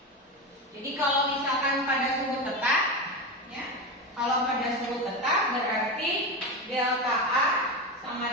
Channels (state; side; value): normal; both; correlation 0.19